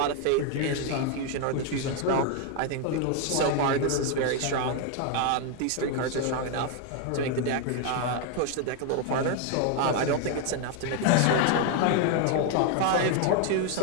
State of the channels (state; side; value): different; both; correlation 0.01